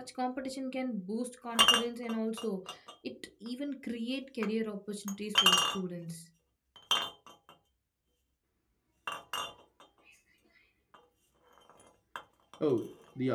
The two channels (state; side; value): identical; both; correlation 1.00